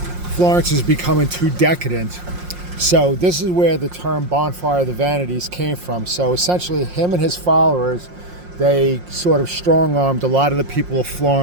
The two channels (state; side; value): late; left; 5.6 ms